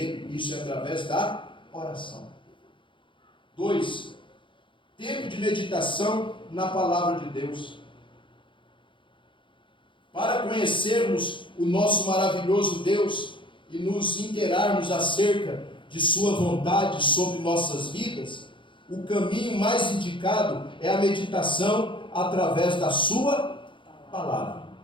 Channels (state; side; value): late; right; 0.24 ms